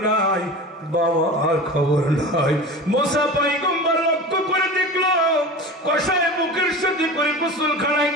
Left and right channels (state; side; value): normal; both; correlation 0.33